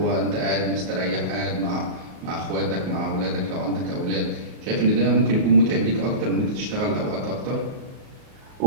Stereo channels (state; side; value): late; left; 38 ms